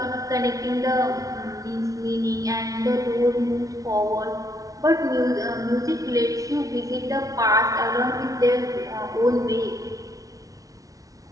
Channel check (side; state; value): left; late; 0.17 ms